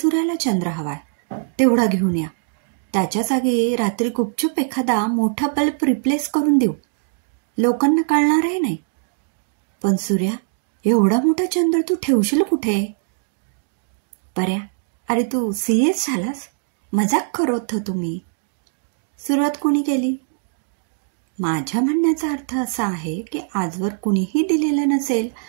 चंद्र हवाय, तेवढा घेऊन या. त्याच्या जागी रात्री गुपचूप एखादा मोठा बल्ब रिप्लेस करून देऊ. लोकांना कळणारही नाही. पण सूर्या, एवढा मोठा चंद्र तू ठेवशील कुठे? पर्या, अरे तू सीरियस झालास? मजाक करत होतो मी. सुरुवात कोणी केली? माझ्या म्हणण्याचा अर्थ असा आहे की आजवर कुणीही दिलेलं नसेल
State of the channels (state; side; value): silent; left; digital silence